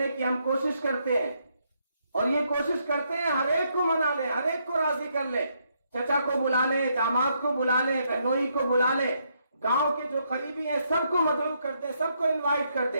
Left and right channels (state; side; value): inverted; both; correlation -0.76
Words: کی ہم کوشش کرتے ہیں، اور یہ کوشش کرتے ہیں ہر ایک کو منا لیں، ہر ایک کو راضی کر لیں، چچا کو بلا لیں، داماد کو بلا لیں، بہنوئی کو بلا لیں، گاؤں کے جو قریبی ہیں سب کو مدعو کر دیں، سب کو انوائٹ کر